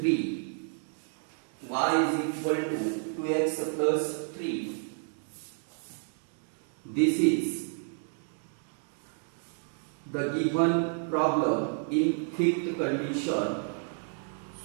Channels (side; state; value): left; silent; 57 dB below the other